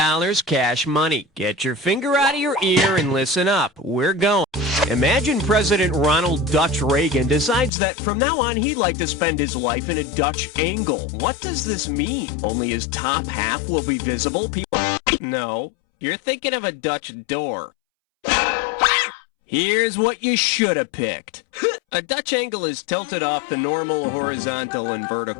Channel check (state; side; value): drops out; right; at 7.7 s